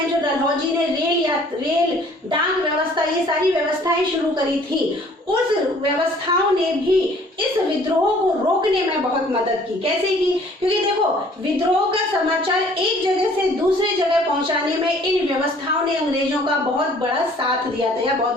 जो डलहौजी ने रेल डाक व्यवस्था, ये सारी व्यवस्थाएं शुरू करी थी, उस व्यवस्थाओं ने भी इस विद्रोह को रोकने में बहुत मदद की। कैसे की? क्योंकि देखो, विद्रोह का समाचार एक जगह से दूसरी जगह पहुंचाने में इन व्यवस्थाओं ने अंग्रेजों का बहुत बड़ा साथ दिया था या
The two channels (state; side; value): normal; both; correlation 0.56